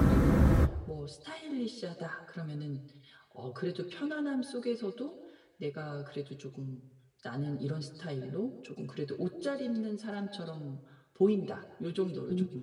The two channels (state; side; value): identical; both; correlation 1.00